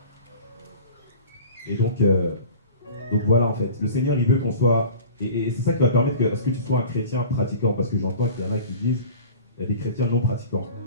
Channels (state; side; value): inverted; both; correlation -0.42